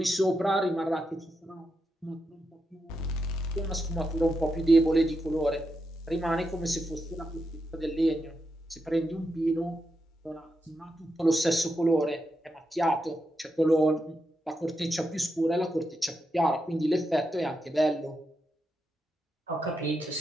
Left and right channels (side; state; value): both; normal; correlation 0.85